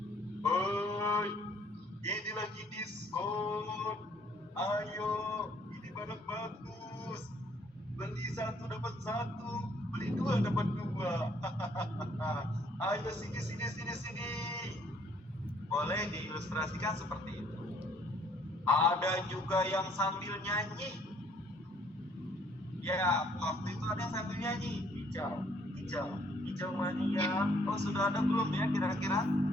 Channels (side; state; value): both; normal; correlation 0.63